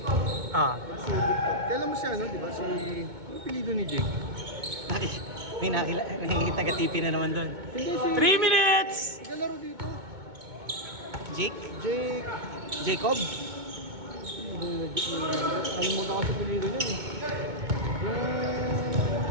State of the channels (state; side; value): late; left; 2.2 ms